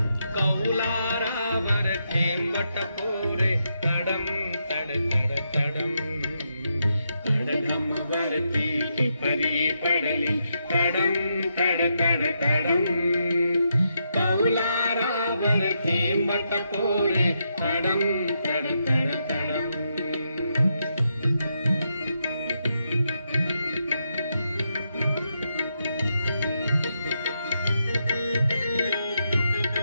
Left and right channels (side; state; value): both; inverted; correlation -0.82